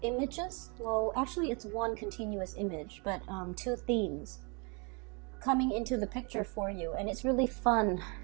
images. Well, actually it's one continuous image, but two themes coming into the picture for you, and it's really fun.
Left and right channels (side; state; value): left; quieter; 32.7 dB